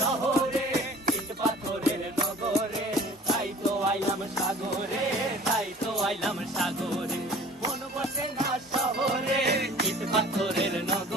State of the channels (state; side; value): normal; both; correlation 0.47